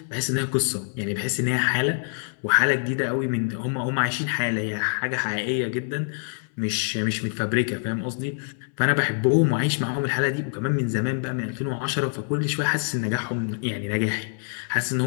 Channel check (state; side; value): silent; right; 62 dB below the other